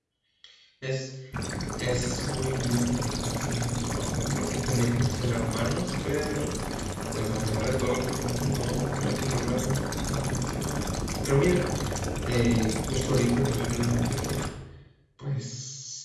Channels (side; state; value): both; identical; correlation 1.00